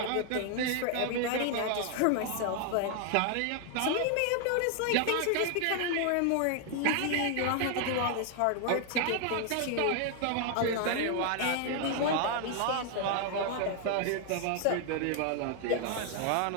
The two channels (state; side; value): different; both; correlation 0.00